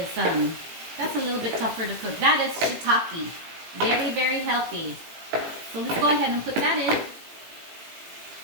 that's a little bit tougher to cook. That is shiitake. Very, very healthy. So let's go ahead and put that in.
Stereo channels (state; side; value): late; left; 18 ms